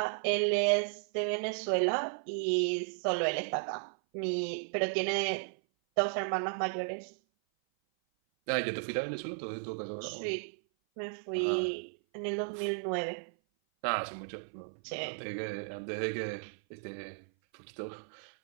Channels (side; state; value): left; silent; 55 dB below the other